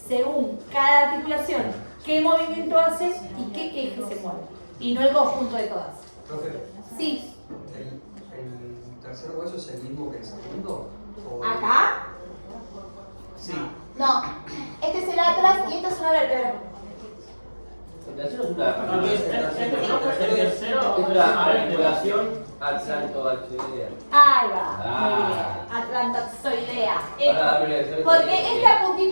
según cada articulación, qué movimiento hace y qué eje se mueve. Y no el conjunto de todas. Profe, Sí. ¿el tercer hueso es el mismo que el segundo? ¿O- ¿Acá? Sí. No. Este es el atlas y esta es una vértebra. La tercera es una articulación atlantoaxilar. Ahí va. Muy bien. Atlantoxoidea. Ahora, Porque esta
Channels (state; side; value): inverted; both; correlation -1.00